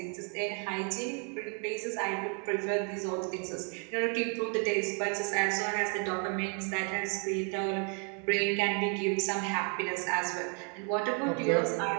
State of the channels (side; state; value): left; quieter; 39.7 dB